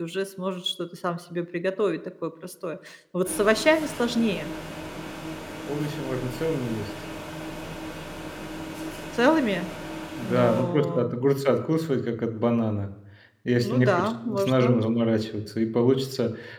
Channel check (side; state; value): both; identical; correlation 1.00